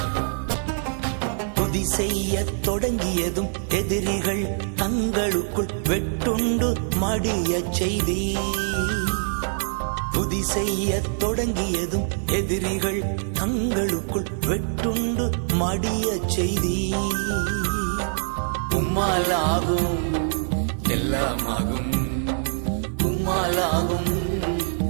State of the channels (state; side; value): silent; left; digital silence